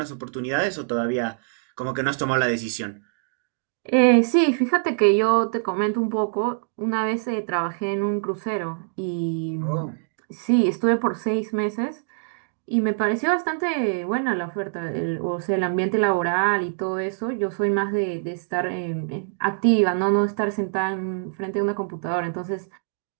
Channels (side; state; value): left; silent; digital silence